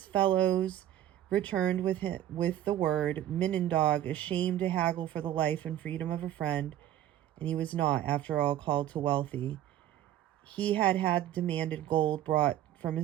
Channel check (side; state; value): left; quieter; 12.1 dB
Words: fellows returned with the word, Minindog, ashamed to haggle for the life and freedom of a friend, and he was not, after all, called to wealthy, he had demanded gold brought from